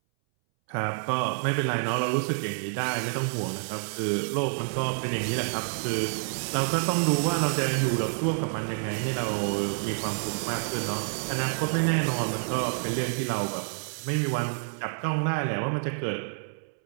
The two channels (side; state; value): left; silent; 59 dB below the other